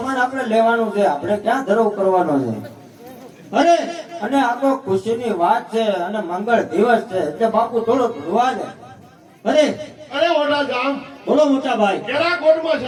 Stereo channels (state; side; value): identical; both; correlation 1.00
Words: આપણે લેવાનું છે, આપણે ક્યાં ધરો કરવાનો છે. અરે અને આ તો ખુશીની વાત છે અને મંગળ દિવસ છે એટલે બાપુ થોડો ભૂલવા દે. અરે અરે ઓઢાધામ, બોલો મોટા ભાઈ. કેરાકોટમાં